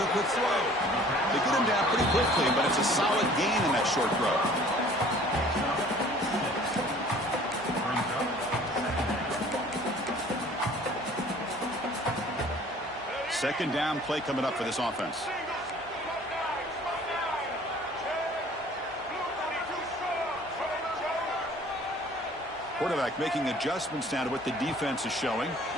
quick throw. They get him down pretty quickly, but it's a solid gain in that short throw. Second down play coming up for this offense. Quarterback making adjustments now to what the defense is showing.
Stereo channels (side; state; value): both; normal; correlation 0.51